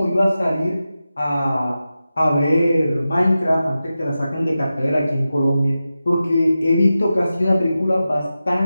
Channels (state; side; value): inverted; both; correlation -0.93